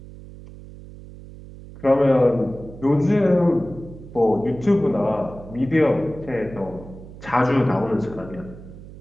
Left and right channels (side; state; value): right; noise; hum, 16 dB below the sound